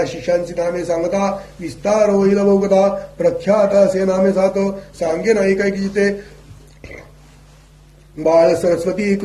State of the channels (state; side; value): identical; both; correlation 1.00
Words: शिष्यांची नामे सांगता विस्तार होईल बहुकथा प्रख्यात असे नामे सात सांगेन ऐक एक चित्ते बाळ सरस्वती